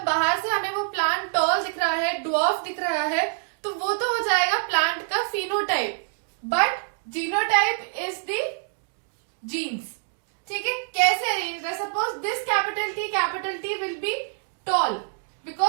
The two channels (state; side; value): silent; left; digital silence